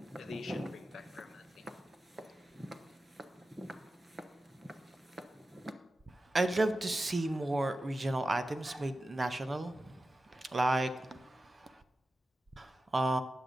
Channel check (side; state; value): both; normal; correlation 0.93